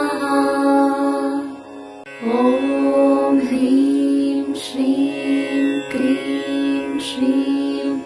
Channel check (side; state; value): both; identical; correlation 1.00